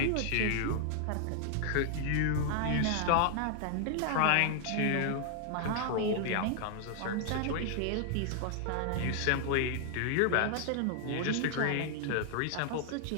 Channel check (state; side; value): different; both; correlation 0.00